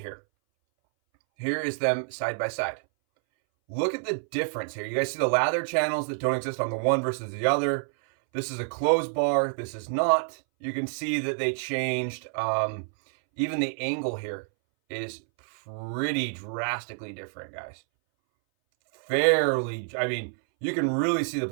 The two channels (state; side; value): silent; left; 60 dB below the other